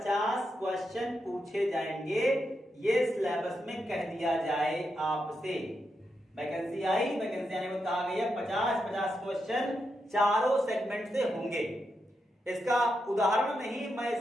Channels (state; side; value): normal; both; correlation 0.85